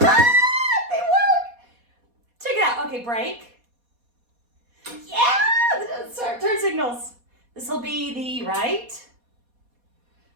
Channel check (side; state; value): left; late; 4.2 ms